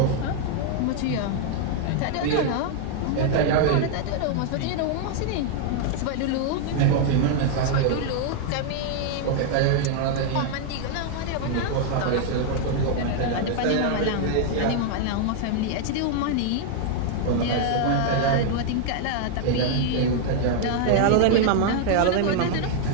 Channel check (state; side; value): different; both; correlation 0.00